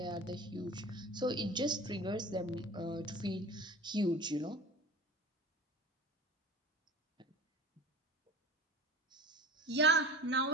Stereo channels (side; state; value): both; normal; correlation 0.37